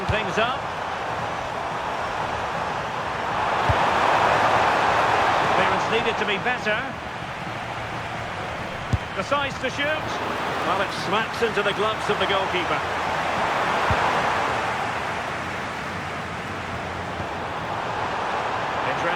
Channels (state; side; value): identical; both; correlation 1.00